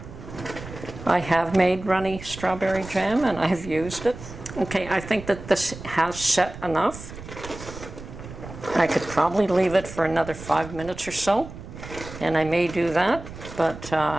I have made runny strawberry jam and I have used it. Okay, I think that this has set enough. I could probably leave it for another 5 minutes or so, and I may do that, but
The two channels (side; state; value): right; noise; rumble, 13 dB below the sound